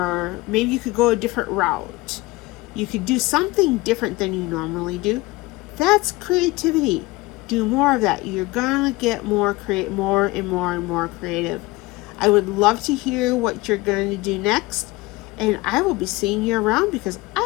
maybe you could go a different route. You could do something different than you normally do. That's creativity. Do more of that. You're gonna get more and more and more creative. I would love to hear what you're going to do next, and I will be seeing you around because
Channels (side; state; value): right; quieter; 21.1 dB